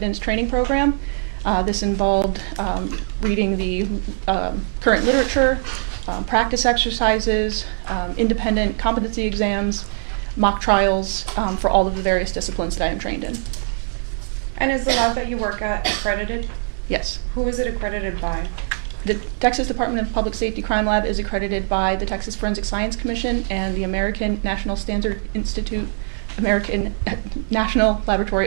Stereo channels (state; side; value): silent; left; 64 dB below the other